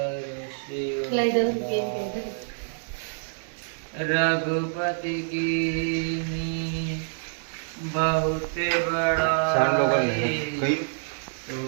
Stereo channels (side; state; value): left; silent; digital silence